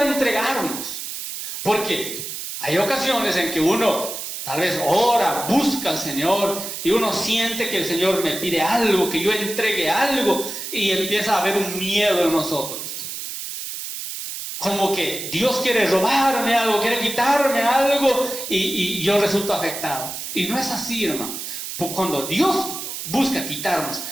entregarnos, porque hay ocasiones en que uno tal vez ora, busca al Señor y uno siente que el Señor me pide algo, que yo entregue algo y empieza a haber un miedo en nosotros. Como que Dios quiere robarme algo, quiere quitarme algo y yo resulto afectado. Y no es así, hermano. Cuando Dios busca quitarnos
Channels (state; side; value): noise; right; hiss, 7 dB below the sound